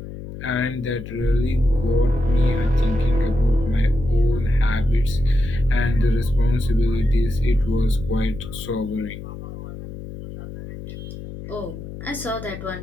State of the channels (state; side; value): noise; left; hum, 11 dB below the sound